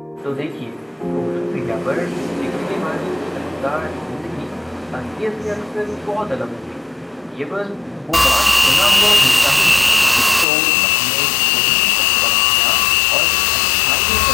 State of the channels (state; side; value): drops out; right; at 10.5 s